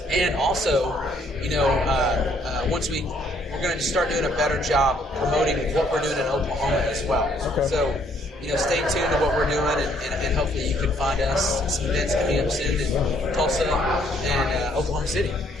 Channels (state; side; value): normal; both; correlation 0.66